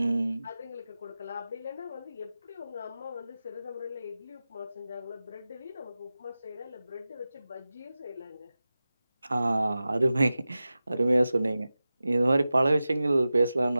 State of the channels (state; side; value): inverted; both; correlation -0.95